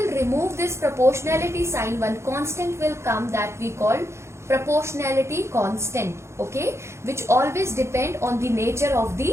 remove this proportionality sign, one constant will come that we call proportionality constant, okay, which always depend on the nature of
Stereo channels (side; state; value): left; late; 0.13 ms